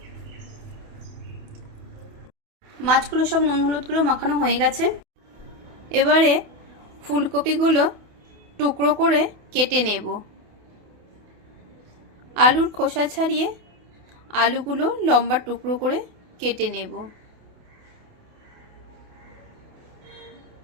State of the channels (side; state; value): left; late; 28 ms